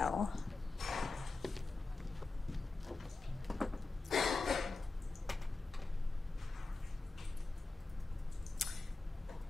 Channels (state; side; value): quieter; right; 3.4 dB